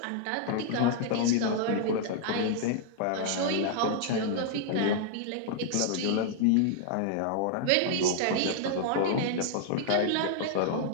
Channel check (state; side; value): different; both; correlation -0.01